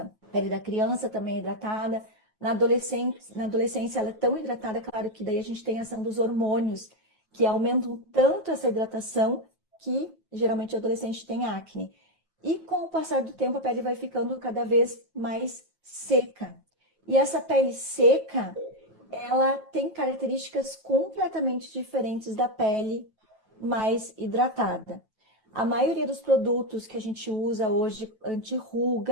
A pele da criança também é hidratada. Na adolescência ela é tão hidratada, claro que daí a gente tem a ação dos hormônios, que aumentam tanto essa hidratação que geralmente o adolescente tem acne. E com o passar do tempo a pele vai ficando cada vez mais seca. E essa pele seca, ela tem características completamente diferentes da pele mais hidratada. A maioria dos produtos que a gente usa hoje,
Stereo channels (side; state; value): right; late; 5.7 ms